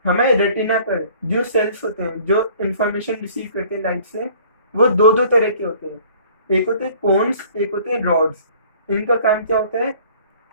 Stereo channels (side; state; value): both; inverted; correlation -0.52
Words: हमें रेटिना पर जो सेल्स होते हैं जो इंफॉर्मेशन रिसीव करते हैं लाइट से, वो दो दो तरह के होते हैं। एक होते हैं कोन्स, एक होते हैं रॉड्स। इनका काम क्या होता है?